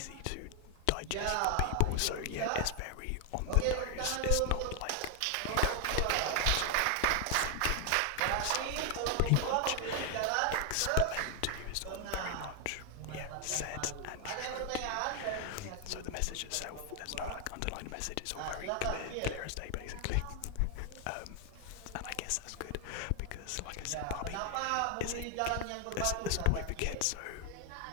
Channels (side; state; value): both; different; correlation 0.00